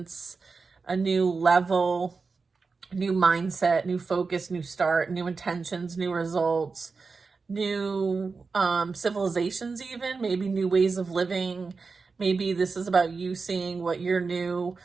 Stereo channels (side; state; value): left; quieter; 4.5 dB